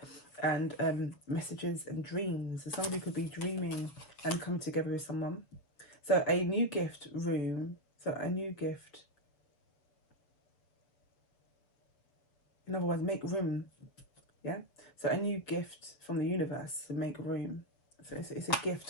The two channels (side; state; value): right; late; 7.0 ms